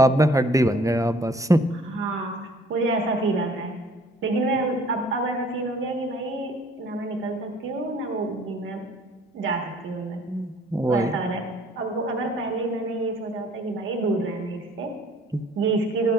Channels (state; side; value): normal; both; correlation 0.56